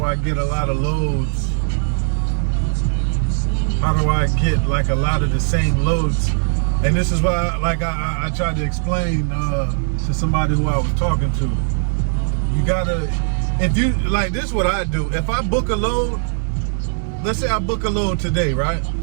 I get a lot of loads? How do I get like a lot of the same loads? And this is why, like I tried to explain to somebody who I was talking to. You gotta, if you like, this is what I do. If I book a load, let's say I book a load today, right?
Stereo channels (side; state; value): left; silent; 66 dB below the other